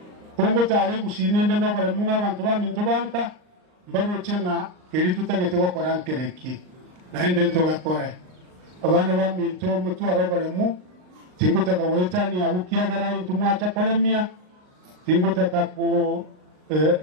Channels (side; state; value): left; late; 39 ms